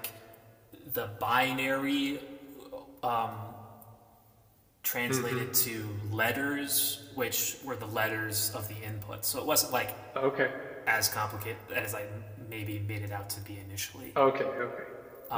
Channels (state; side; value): identical; both; correlation 1.00